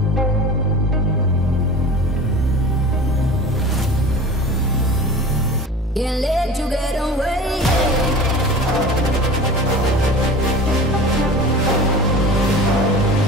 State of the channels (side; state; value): both; normal; correlation 0.37